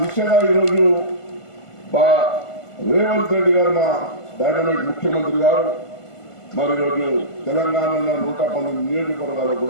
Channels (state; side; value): late; right; 1.5 ms